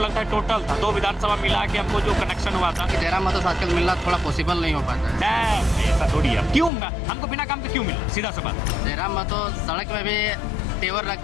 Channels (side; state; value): right; drops out; at 6.7 s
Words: है टोटल था। 2 विधानसभा मिला के हमको जो कनेक्शन हुआ था। जयराम महतो से आजकल मिलना थोड़ा पॉसिबल नहीं हो पाता है। ऐसा थोड़ी है, क्यों हमको बिना काम के क्यों मिला, सीधा सा बात। जयराम महतो सड़क में भी तेवर